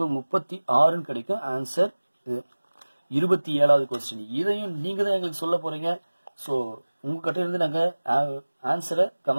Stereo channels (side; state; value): both; inverted; correlation -1.00